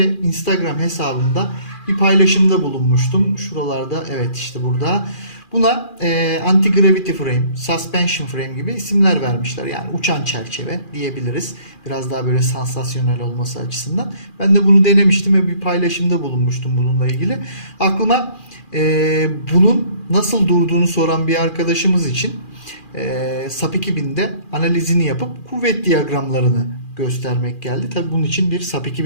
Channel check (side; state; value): right; late; 2.4 ms